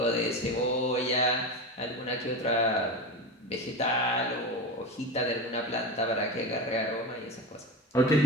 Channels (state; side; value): normal; both; correlation 0.27